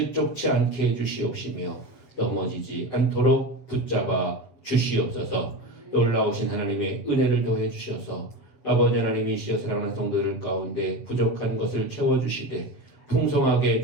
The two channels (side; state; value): right; late; 7.4 ms